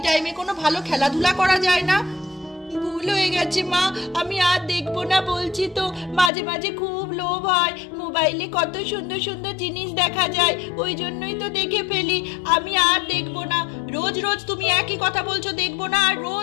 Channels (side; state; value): right; drops out; at 6.3 s